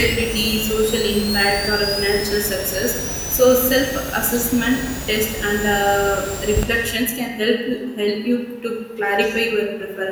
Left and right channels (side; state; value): both; identical; correlation 1.00